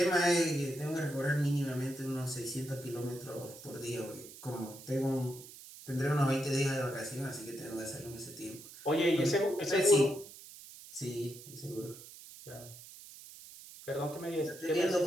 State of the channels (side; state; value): right; noise; hiss, 16 dB below the sound